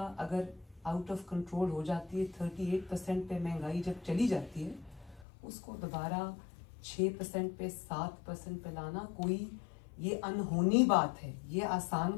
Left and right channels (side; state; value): right; drops out; at 5.2 s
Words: अगर आउट ऑफ कंट्रोल हो जाती है, 38% पे महंगाई जब चली जाती है, उसको दोबारा 6% पे 7% पे लाना कोई ये अनहोनी बात है, ये आसान